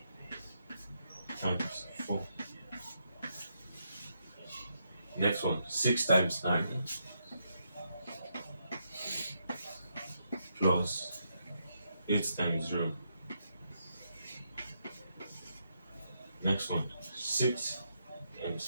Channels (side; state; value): both; inverted; correlation -0.80